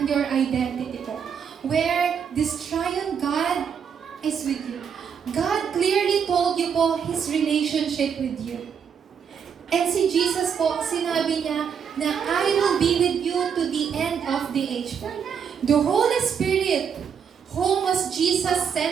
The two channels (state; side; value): quieter; left; 7.2 dB